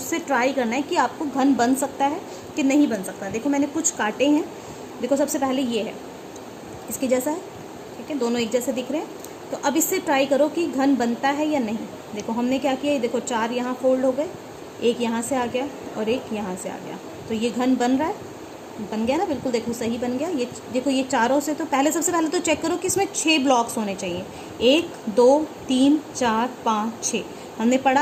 ट्राई करना है कि आपको घन बन सकता है कि नहीं बन सकता। देखो मैंने कुछ काटे हैं। देखो सबसे पहले ये है, इसके जैसा है। ठीक है, दोनों एक जैसे दिख रहे हैं। तो अब इससे ट्राई करो कि घन बनता है या नहीं। देखो हमने क्या किया, देखो 4 यहाँ फोल्ड हो गए, एक यहाँ से आ गया और एक यहाँ से आ गया। तो ये घन बन रहा है, बन गया ना, बिल्कुल देखो सही बन गया। ये देखो ये चारों से, तो पहले सबसे पहले तो चेक करो कि इसमें 6 ब्लॉक्स होने चाहिए। 1 2 3 4 5 6। हमने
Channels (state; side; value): identical; both; correlation 1.00